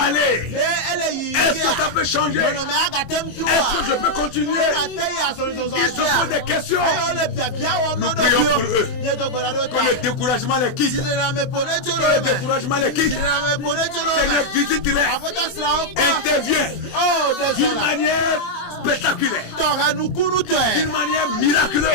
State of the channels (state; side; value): late; right; 24 ms